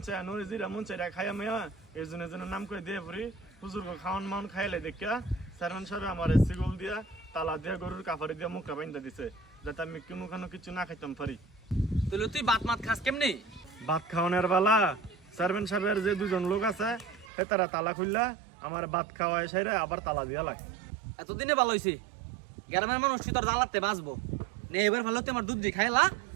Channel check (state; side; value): drops out; left; at 17.2 s